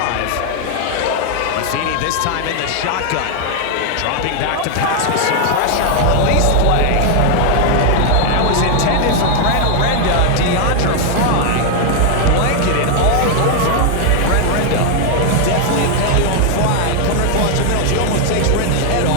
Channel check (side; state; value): both; different; correlation 0.00